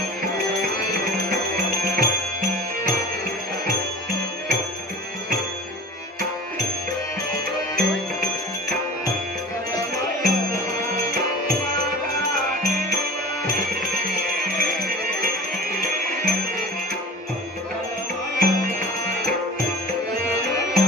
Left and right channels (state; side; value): normal; both; correlation 0.36